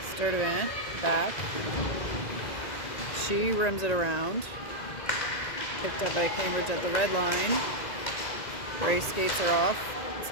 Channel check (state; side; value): late; right; 2.0 ms